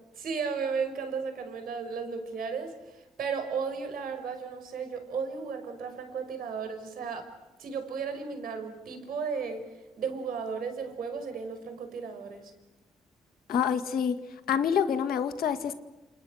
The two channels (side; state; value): both; normal; correlation 0.50